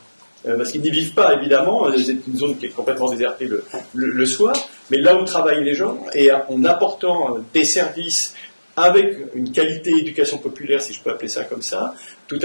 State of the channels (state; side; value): inverted; both; correlation -1.00